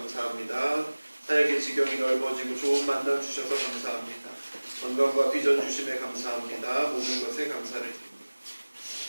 사역의 지경이 넓어지고 좋은 만남 주셔서 감사합니다. 건강과 비전 주심에 감사합니다. 모든 것에 감사를 드립니다.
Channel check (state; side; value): inverted; both; correlation -1.00